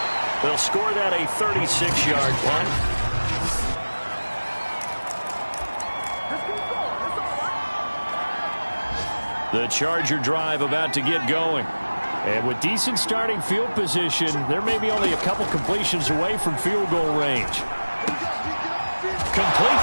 They'll score that a 36-yard punt. The Charger drive about to get going. And with decent starting field position, there may be only a couple completions away from field goal range. Complete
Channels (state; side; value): inverted; both; correlation -1.00